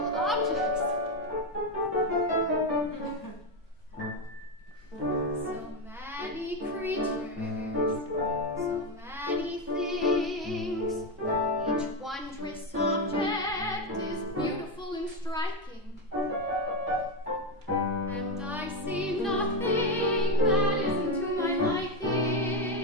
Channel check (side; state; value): both; normal; correlation 0.10